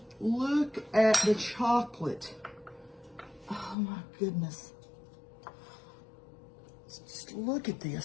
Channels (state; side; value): drops out; right; at 3.8 s